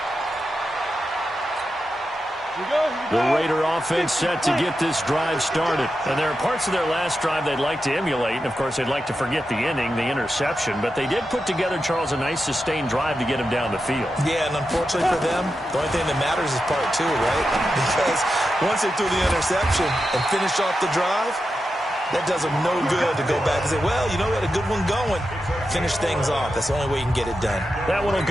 Here we go. The Raider offense set to get this drive started. And there are parts of their last drive they'd like to emulate. And, of course, they'd like to forget the inning, the interception. But they did put together, Charles, a nice sustained drive to get him down the field. Yeah, and unfortunately for them, the only thing that matters is part two, right? Because once they threw the interception and finished off the drive, that does them no good to go back and say, well, you know, we had a good one going. Finish things off. That's the only way you can get it done. That one will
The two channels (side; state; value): both; normal; correlation 0.89